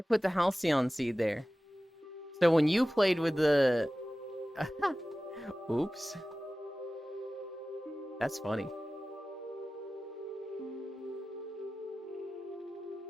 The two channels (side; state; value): both; normal; correlation 0.96